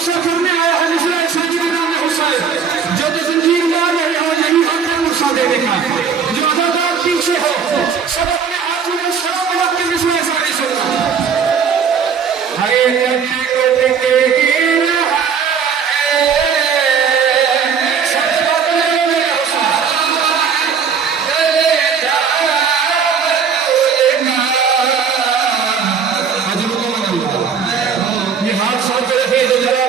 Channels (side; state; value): left; quieter; 6.5 dB